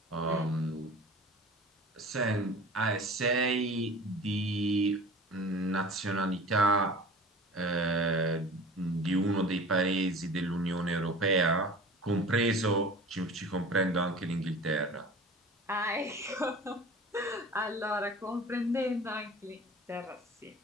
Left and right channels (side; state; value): both; normal; correlation 0.40